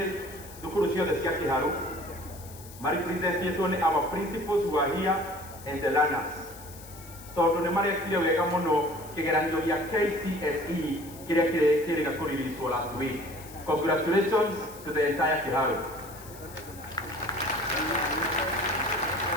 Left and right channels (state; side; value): noise; left; hiss, 18 dB below the sound